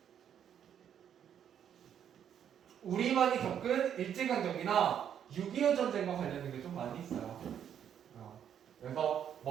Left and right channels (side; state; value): left; quieter; 9.1 dB